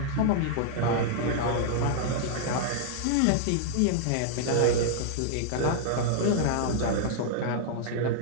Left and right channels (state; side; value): different; both; correlation -0.01